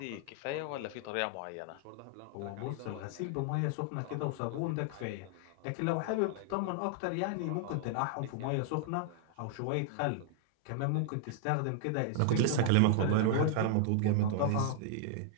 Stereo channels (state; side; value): different; both; correlation -0.01